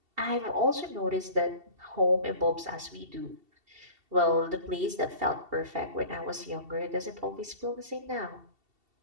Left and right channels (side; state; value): left; late; 2.7 ms